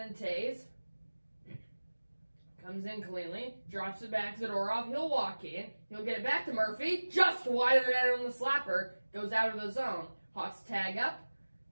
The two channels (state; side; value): inverted; both; correlation -1.00